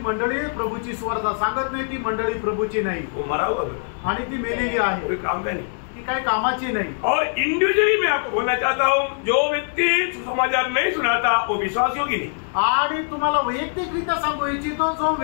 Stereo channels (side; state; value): right; silent; digital silence